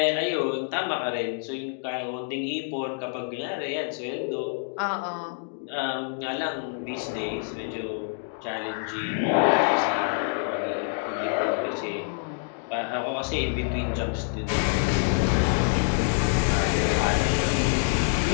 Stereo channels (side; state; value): right; silent; 60 dB below the other